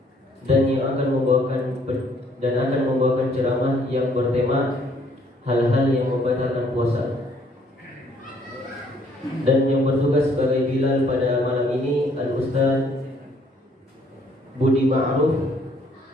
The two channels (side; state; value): both; normal; correlation 0.64